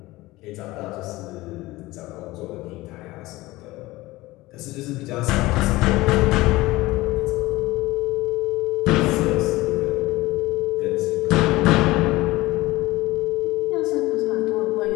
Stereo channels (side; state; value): right; quieter; 19.4 dB